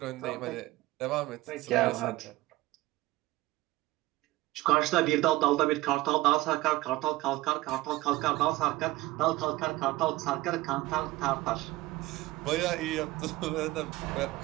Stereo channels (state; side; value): quieter; left; 18.5 dB